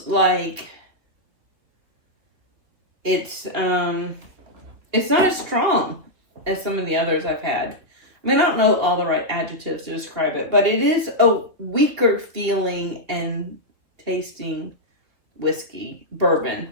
like it's not as strong as some of the others I've had. I mean, I don't know all the right adjectives to describe it, but it is a weaker feeling and tasting whiskey, bourbon,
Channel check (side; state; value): left; late; 2.8 ms